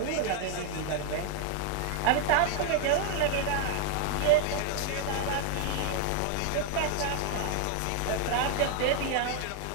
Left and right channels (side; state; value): both; different; correlation 0.00